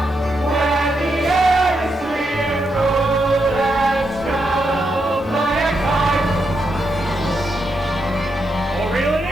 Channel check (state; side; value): normal; both; correlation 0.82